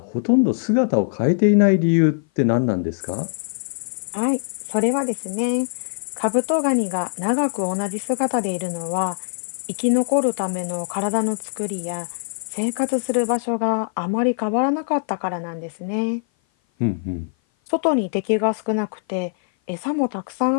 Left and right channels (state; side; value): silent; right; 56 dB below the other